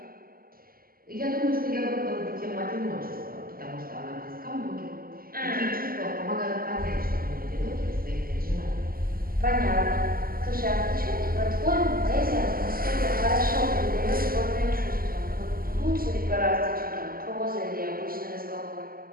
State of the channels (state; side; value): late; left; 0.42 ms